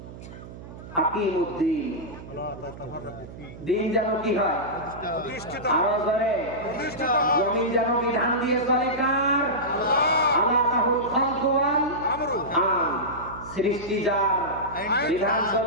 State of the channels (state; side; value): noise; right; hum, 14 dB below the sound